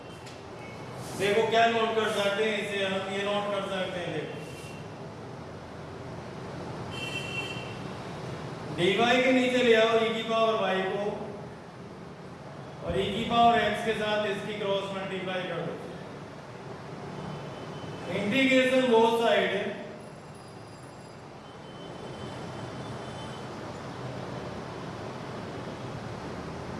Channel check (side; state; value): both; identical; correlation 1.00